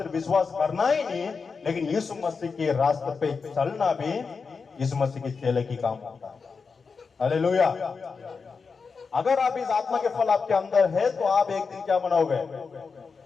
विश्वास करना ही नहीं, लेकिन यीशु मसीह के रास्ते पे चलना भी यीशु मसीह के चेले की काम होता है। हालेलुया। अगर आप इस आत्मा के फल आपके अंदर है तो आप एक दिन क्या बनोगे?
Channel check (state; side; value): quieter; right; 5.1 dB